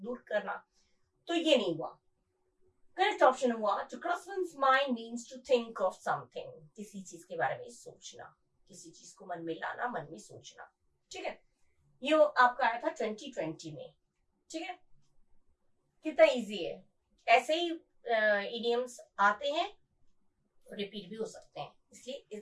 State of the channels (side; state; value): both; identical; correlation 1.00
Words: दूर करना, तो ये नहीं हुआ। करेक्ट ऑप्शन हुआ to cross one's mind means to think of something, किसी चीज के बारे में सोचना, किसी चीज को मन में लाना, मन में सोचना। ठीक है, ये आपका आया था 2020 में। ठीक है, कितना इजी है। ऐसे ही इडियम्स आते हैं, रिपीट भी हो सकते हैं, इसलिए